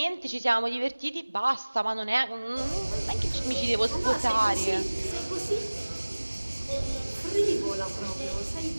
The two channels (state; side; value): inverted; both; correlation -1.00